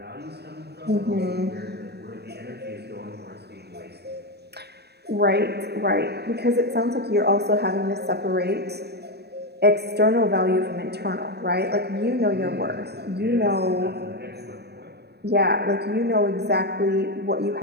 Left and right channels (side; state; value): left; late; 0.48 ms